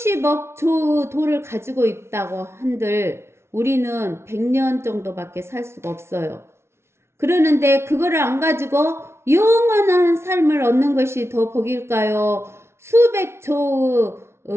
조 돈을 가지고 있다고 한들 우리는 100년 정도밖에 살 수가 없어요. 그러는데 그거를 안 가지고 영원한 삶을 얻는 것이 더 복일까요? 수백 조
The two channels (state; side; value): late; left; 0.12 ms